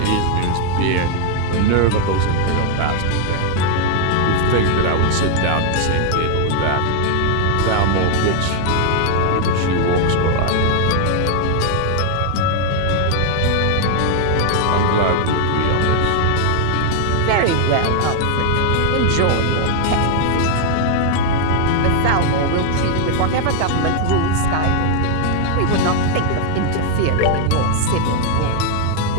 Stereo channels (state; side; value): different; both; correlation 0.00